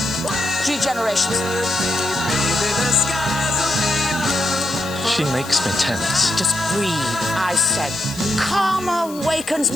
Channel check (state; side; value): noise; left; hiss, 18 dB below the sound